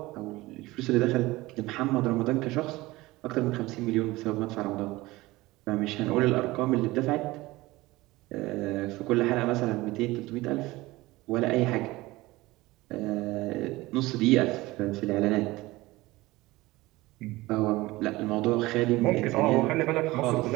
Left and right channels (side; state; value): left; quieter; 19.7 dB